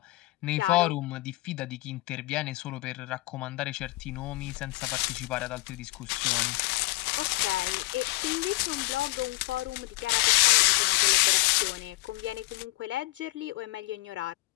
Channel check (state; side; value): quieter; right; 21.4 dB